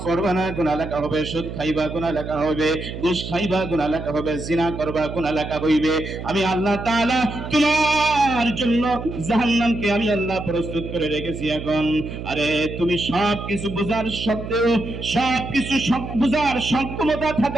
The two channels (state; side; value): noise; right; hum, 8 dB below the sound